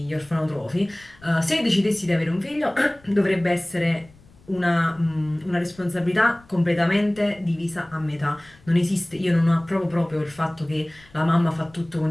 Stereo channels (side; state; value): left; noise; rumble, 27 dB below the sound